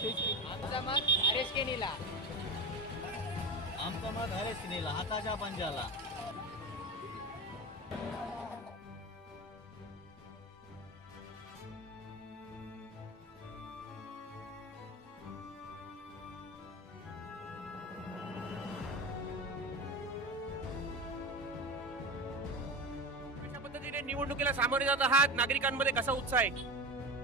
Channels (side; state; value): both; normal; correlation 0.26